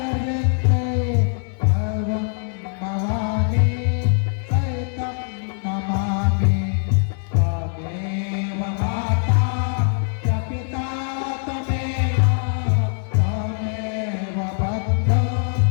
भवं भवानी सहितं नमामि। त्वमेव माता च पिता त्वमेव त्वमेव बन्धो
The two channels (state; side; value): silent; right; 56 dB below the other